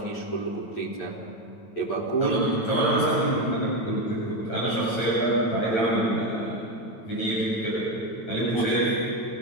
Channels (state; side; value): late; right; 8.9 ms